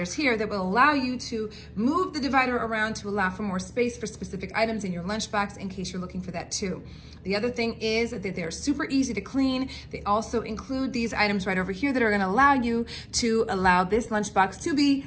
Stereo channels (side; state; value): both; identical; correlation 1.00